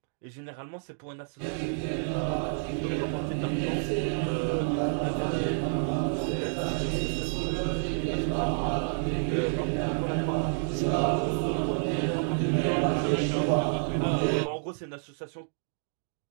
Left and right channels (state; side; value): silent; left; digital silence